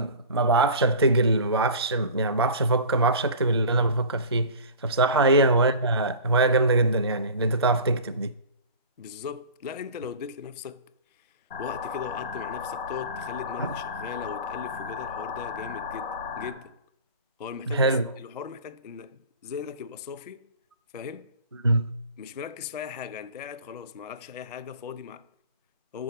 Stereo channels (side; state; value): both; inverted; correlation -0.37